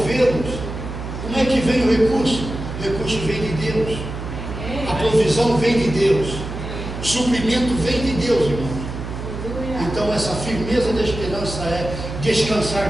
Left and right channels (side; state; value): right; noise; hum, 8 dB below the sound